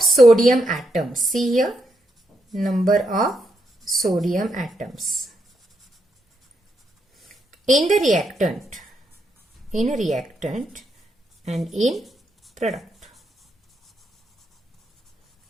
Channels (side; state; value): both; normal; correlation 0.80